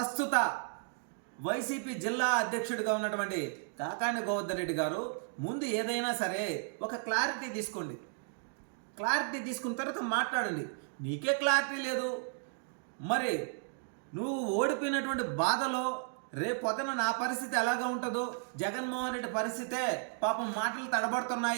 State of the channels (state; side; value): silent; left; 55 dB below the other